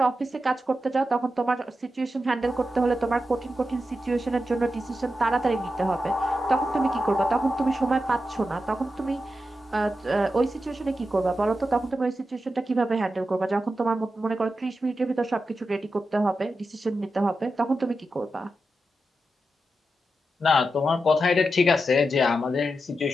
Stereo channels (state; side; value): normal; both; correlation 0.89